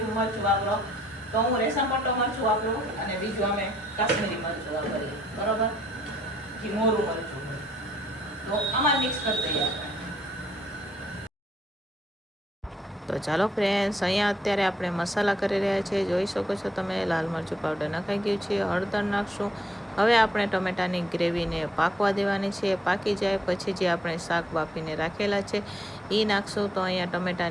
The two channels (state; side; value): normal; both; correlation 0.70